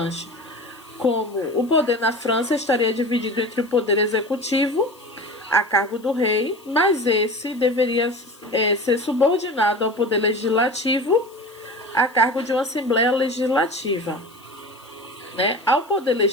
como o poder na França estaria dividido entre o poder executivo, a cargo do rei, mas esse deveria ser subordinado ao poder legislativo, a cargo de uma Assembleia Legislativa. Né? Ao poder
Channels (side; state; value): left; noise; hiss, 27 dB below the sound